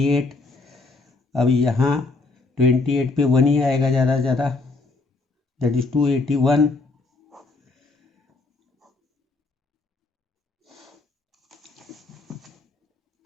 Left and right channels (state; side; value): quieter; right; 3.7 dB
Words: अब यहाँ 28 पे 1 ही आएगा ज़्यादा से ज़्यादा, दैट इज 281।